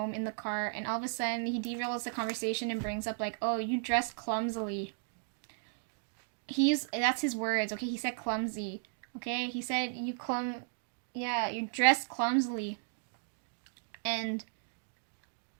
in the car, and all of a sudden, he derails the conversation and brings up, like, oh, you dress clumsily. That's his words, okay? He said clumsy, okay? He said you dress clumsily. And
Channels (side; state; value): left; silent; digital silence